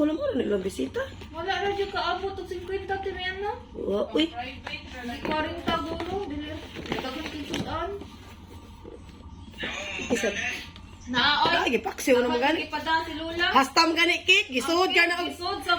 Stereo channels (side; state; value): both; identical; correlation 1.00